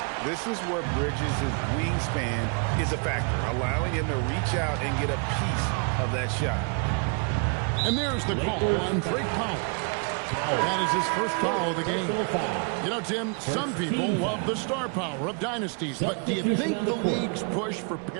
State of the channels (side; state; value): left; quieter; 37.2 dB